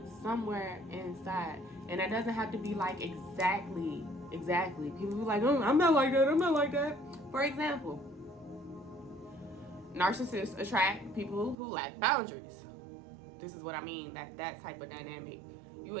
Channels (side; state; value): left; drops out; at 11.6 s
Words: somewhere inside. And that doesn't have to be like exactly. People be like, oh, I'm not like that. For example, narcissists attract people who lack boundaries. This is what I mean, that type of dynamic. You